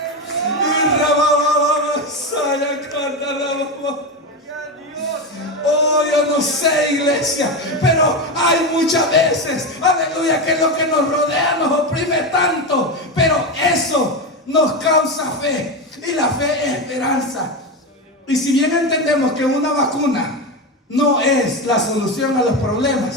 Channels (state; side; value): normal; both; correlation 0.16